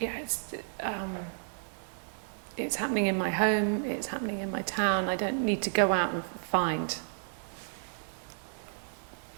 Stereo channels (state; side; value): silent; left; 56 dB below the other